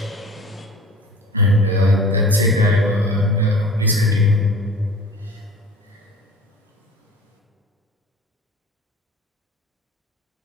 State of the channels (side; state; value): both; normal; correlation 0.43